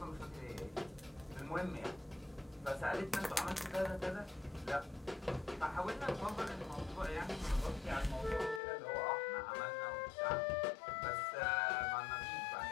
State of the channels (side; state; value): right; drops out; at 8.6 s